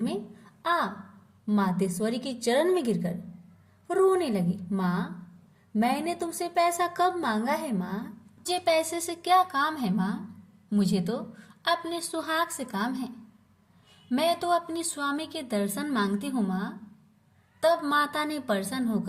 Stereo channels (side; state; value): both; identical; correlation 1.00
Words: में आ मातेश्वरी के चरण में गिरकर रोने लगी। माँ मैंने तुमसे पैसा कब मांगा है माँ? मुझे पैसे से क्या काम है माँ? मुझे तो अपने सुहाग से काम है। मैं तो अपनी स्वामी के दर्शन मांगती हूँ माँ। तब माता ने प्रसन्न